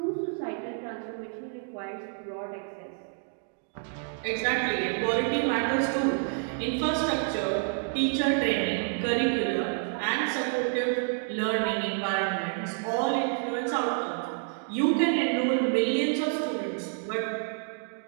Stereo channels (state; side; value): silent; left; 59 dB below the other